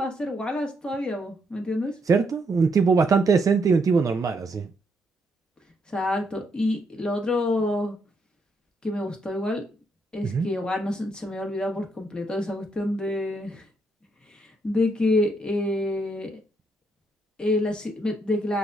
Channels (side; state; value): both; normal; correlation 0.76